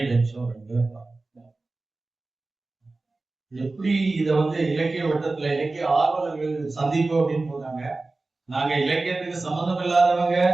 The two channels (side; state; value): left; quieter; 3.4 dB